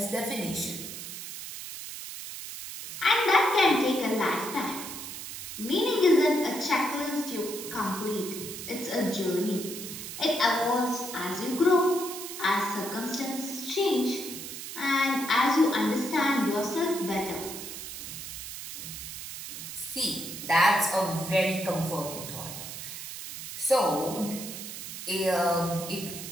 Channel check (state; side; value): noise; right; hiss, 9 dB below the sound